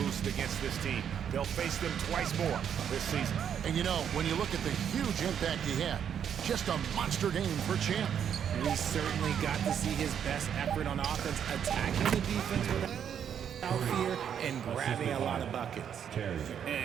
against this team. They'll face them twice more this season. And you know, when you look at the huge impact he had, just a monster game for Champ. We certainly got to see his best effort on offense, attacking the defense without fear and grabbing a lot of buckets.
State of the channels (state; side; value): quieter; left; 8.5 dB